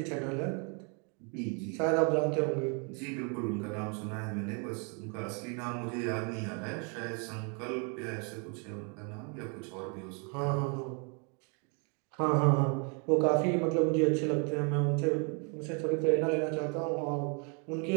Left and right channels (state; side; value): quieter; left; 36.7 dB